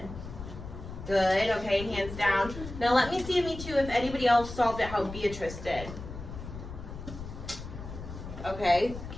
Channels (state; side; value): noise; left; rumble, 11 dB below the sound